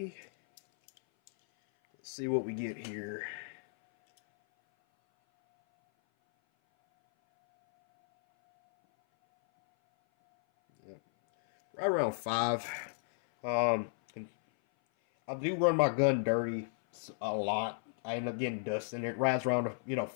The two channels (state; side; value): silent; right; 55 dB below the other